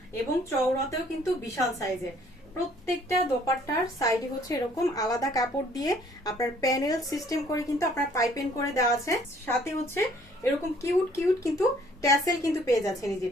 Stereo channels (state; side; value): normal; both; correlation 0.60